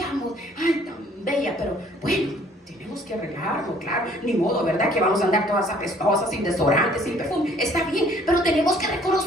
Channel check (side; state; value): both; normal; correlation 0.58